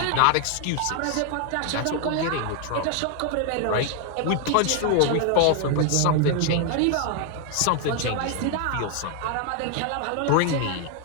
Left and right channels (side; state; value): both; different; correlation 0.00